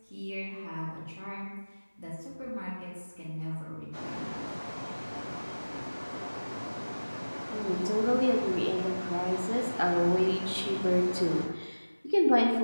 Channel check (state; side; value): inverted; both; correlation -1.00